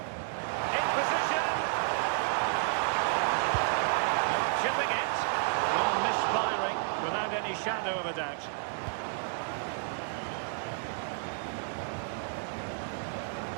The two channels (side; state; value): left; silent; digital silence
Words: In position. Chipping it. Well, misfiring without any shadow of a doubt.